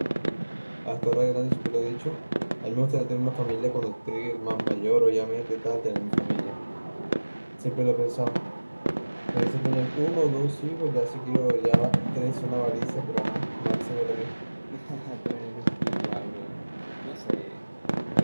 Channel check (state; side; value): inverted; both; correlation -1.00